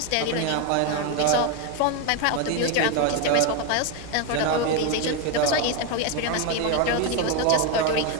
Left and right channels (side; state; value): both; different; correlation 0.02